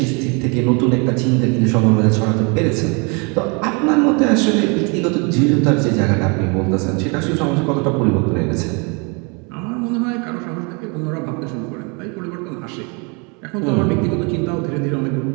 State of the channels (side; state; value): left; quieter; 32.3 dB